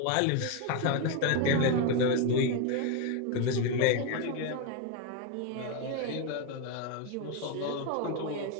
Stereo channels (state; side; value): different; both; correlation 0.01